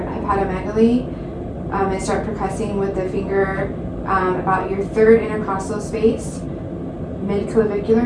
hepatomegaly and start percussing with the finger about your 3rd intercostal space, mid-clavicular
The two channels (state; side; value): identical; both; correlation 1.00